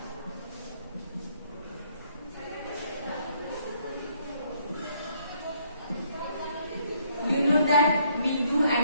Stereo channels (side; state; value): both; inverted; correlation -0.68